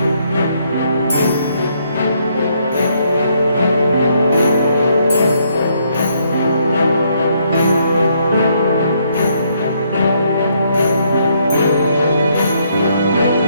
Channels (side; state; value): both; inverted; correlation -0.72